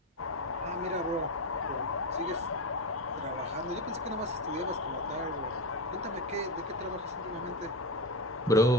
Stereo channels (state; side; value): normal; both; correlation 0.17